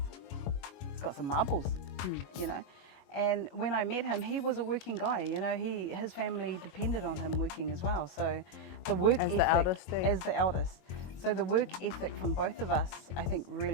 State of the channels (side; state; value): right; late; 22 ms